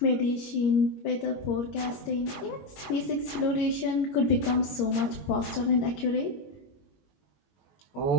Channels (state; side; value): late; right; 21 ms